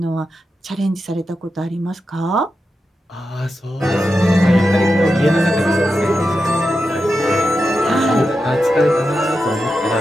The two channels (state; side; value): normal; both; correlation 0.89